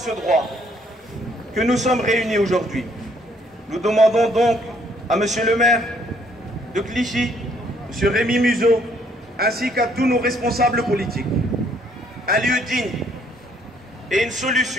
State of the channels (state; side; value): normal; both; correlation 0.66